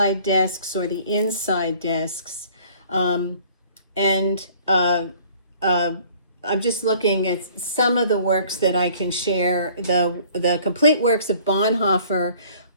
desks or the inside desks. I'm just looking at some of the works that I can share. The complete works of Bonhoeffer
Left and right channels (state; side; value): inverted; both; correlation -0.54